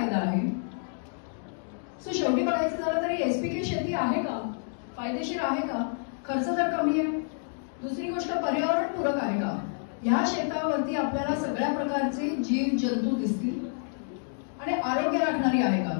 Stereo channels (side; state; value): right; silent; digital silence